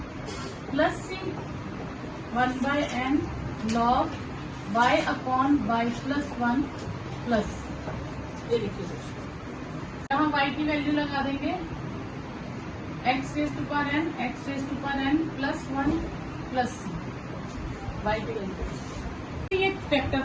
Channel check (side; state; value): both; identical; correlation 1.00